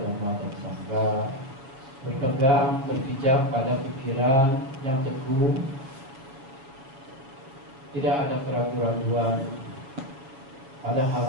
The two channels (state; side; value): late; left; 7.3 ms